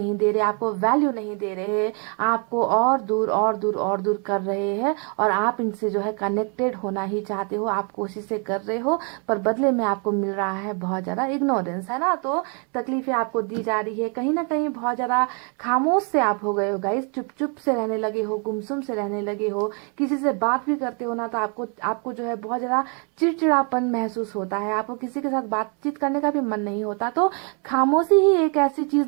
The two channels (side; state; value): left; quieter; 37.7 dB